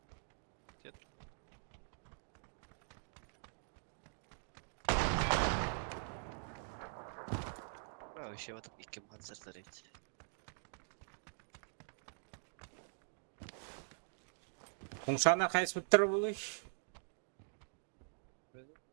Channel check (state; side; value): silent; left; digital silence